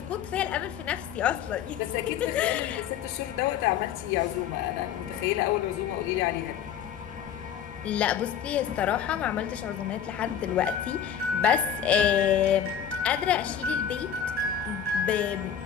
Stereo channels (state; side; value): quieter; right; 8.8 dB